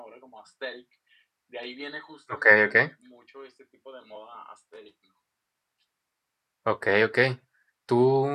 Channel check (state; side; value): identical; both; correlation 1.00